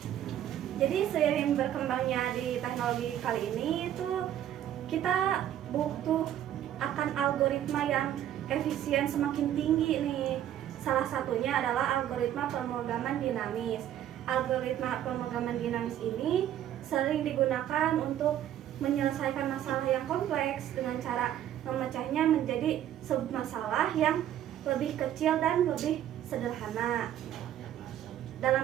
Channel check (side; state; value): left; quieter; 11.3 dB